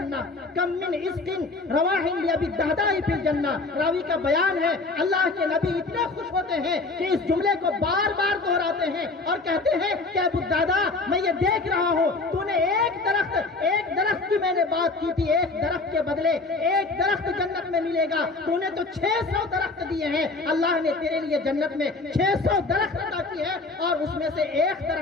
کم من عزق رواح لأبی الدرداء فی الجنہ۔ راوی کا بیان ہے اللہ کے نبی اتنے خوش ہوتے ہیں کہ اس جملے کو بار بار دہراتے ہیں اور کہتے ہیں کہ ابو الدرداء میں یہ دیکھ رہا ہوں تو نے ایک درخت کی میں نے بات کی تھی، ایک درخت کے بدلے ایک درخت جنت میں ملے گا، تو نے تو 600 درخت دیے ہیں، اللہ نے تیرے لیے جنت میں 600 درخت عطا کی ہے اور اس میں سے ایک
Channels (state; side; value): quieter; right; 3.6 dB